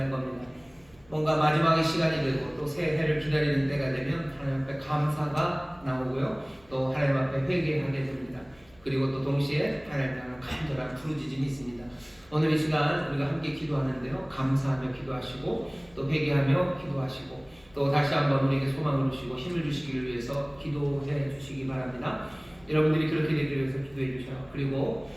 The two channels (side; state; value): left; noise; hum, 29 dB below the sound